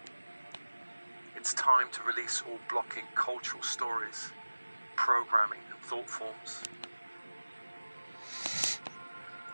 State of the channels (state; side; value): inverted; both; correlation -1.00